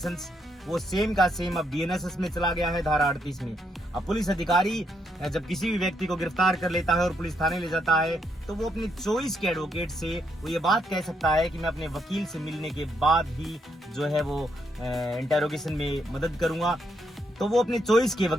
वो सेम का सेम अब BNSS में चला गया है धारा 38 में। अब पुलिस अधिकारी जब किसी भी व्यक्ति को गिरफ्तार कर लेता है और पुलिस थाने ले जाता है तो वो अपनी चॉइस के एडवोकेट से वो ये बात कह सकता है कि मैं अपने वकील से मिलने के बाद ही जो है वो इंटेरोगेशन में मदद करूंगा। तो वो अपने चॉइस के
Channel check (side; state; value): both; normal; correlation 0.77